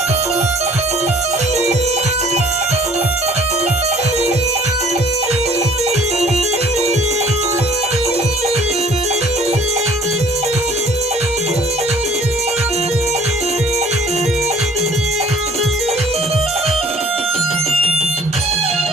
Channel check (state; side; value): normal; both; correlation 0.53